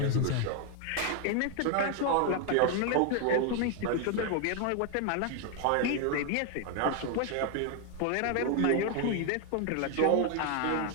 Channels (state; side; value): different; both; correlation 0.00